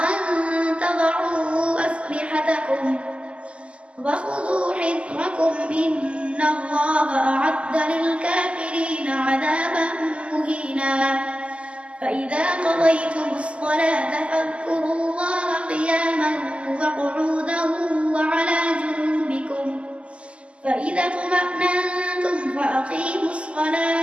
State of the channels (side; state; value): left; late; 0.056 ms